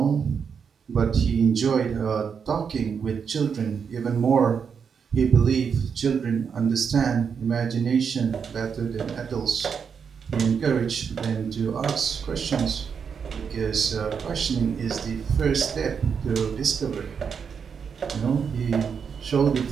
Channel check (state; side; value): quieter; left; 6.5 dB